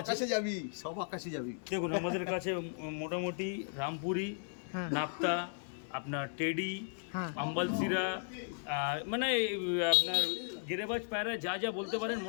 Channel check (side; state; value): right; silent; digital silence